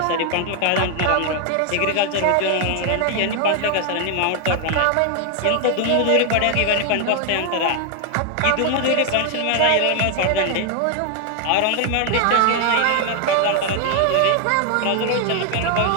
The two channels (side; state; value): both; different; correlation 0.00